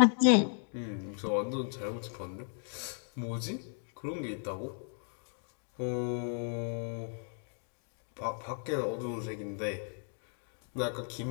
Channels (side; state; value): right; silent; 54 dB below the other